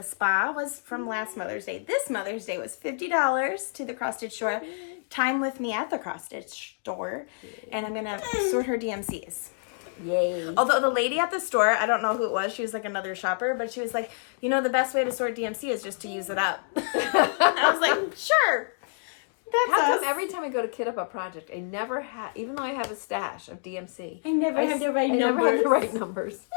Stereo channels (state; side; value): silent; right; digital silence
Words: spa was from last Mother's Day. This Mother's Day was $50 to the cross stitch store. Time with me at the cross stitch store, and I'm gonna sort her DMCs. Yay. Although the lady at the store, I don't know who it was, she was like another shopper, but she was like, you know, the best way to sort DMC is just to use it up. I was like, sure. That's every time I go to kit up a project, I never have, even though I have a stash of DMC. I never have the right numbers. Never have the right numbers.